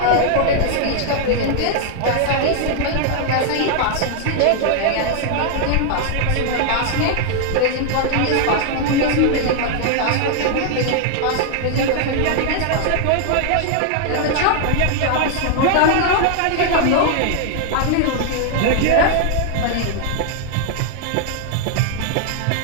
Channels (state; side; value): different; both; correlation 0.00